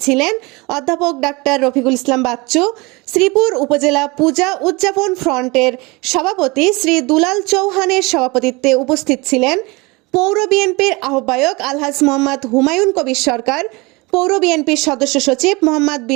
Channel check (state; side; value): quieter; left; 25.2 dB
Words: ছিলেন অধ্যাপক ডাক্তার রফিকুল ইসলাম বাচ্চু, শ্রীপুর উপজেলা পূজা উদযাপন ফ্রন্টের সভাপতি শ্রী দুলাল চৌহানের সভাপতিত্বে উপস্থিত ছিলেন পৌর বিএনপির আহ্বায়ক আলহাজ মোহাম্মদ হুমায়ুন কবির সরকার, পৌর বিএনপির সদস্য সচিব মোহাম্মদ